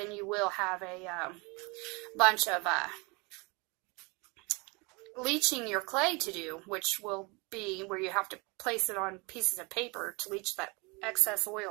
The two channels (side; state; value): left; quieter; 28.4 dB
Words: you will have a bunch of leaching your clay to do, which will be where you have to place it on pieces of paper to leach that excess